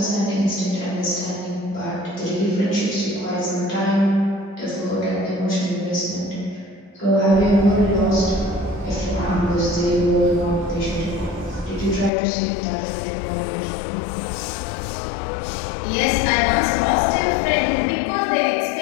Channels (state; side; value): drops out; right; at 12.1 s